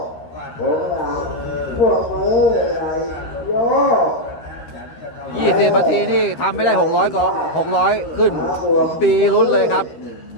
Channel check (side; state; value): right; late; 13 ms